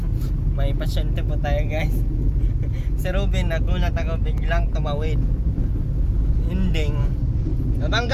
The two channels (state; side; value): identical; both; correlation 1.00